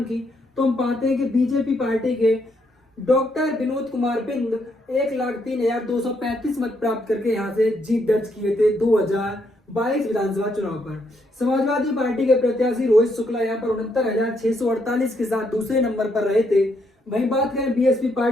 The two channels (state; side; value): normal; both; correlation 0.75